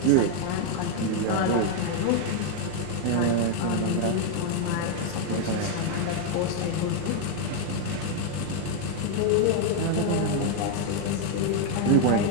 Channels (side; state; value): both; different; correlation 0.00